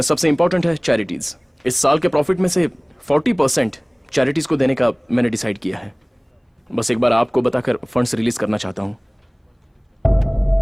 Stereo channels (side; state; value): both; identical; correlation 1.00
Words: सबसे इंपॉर्टेंट है चैरिटीज। इस साल के प्रॉफिट में से 40% चैरिटीज को देने का मैंने डिसाइड किया है। बस एक बार आपको बताकर फंड्स रिलीज करना चाहता हूँ।